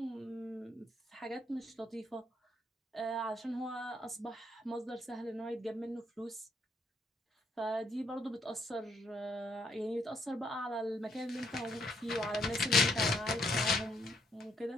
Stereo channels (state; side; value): normal; both; correlation 0.72